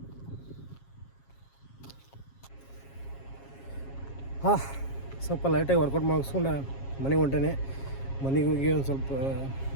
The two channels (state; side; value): late; right; 7.4 ms